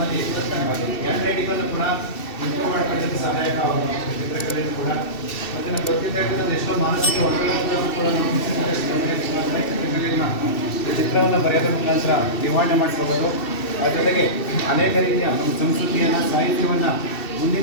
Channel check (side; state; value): right; late; 2.6 ms